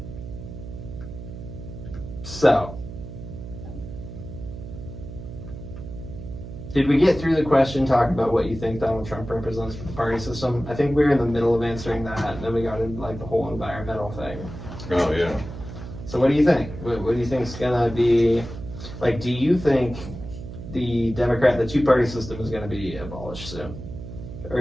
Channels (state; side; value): noise; right; hum, 11 dB below the sound